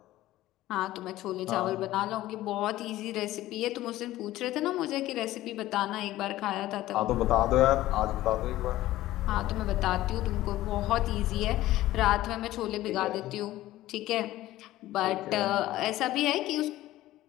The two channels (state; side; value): quieter; right; 15.5 dB